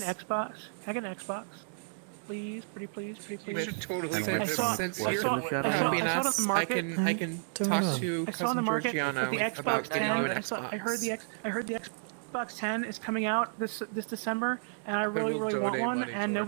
Xbox? Can I get an Xbox? Please, pretty please, pretty You please. should totally And get with I saw- since I work saw- in the I shadow saw- Happy I saw enough. the market. I can don't talk know. to I saw in cousin the market Georgiano that the about Xbox getting 10. you an I Xbox. heard the Xbox 10 is coming out this December, and I really will want donate one, money and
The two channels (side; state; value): left; silent; digital silence